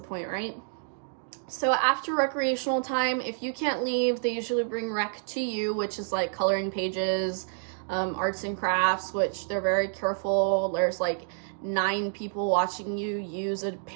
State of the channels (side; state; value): left; silent; digital silence